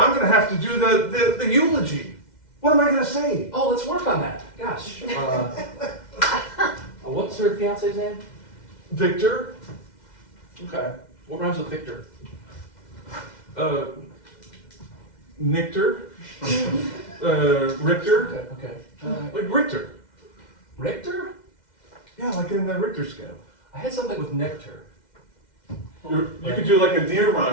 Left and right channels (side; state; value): right; late; 2.1 ms